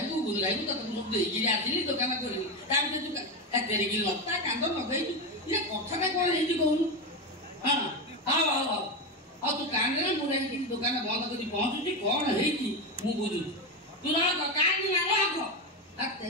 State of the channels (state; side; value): normal; both; correlation 0.14